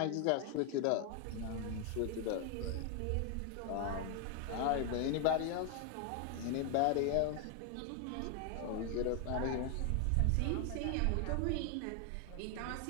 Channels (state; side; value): different; both; correlation 0.00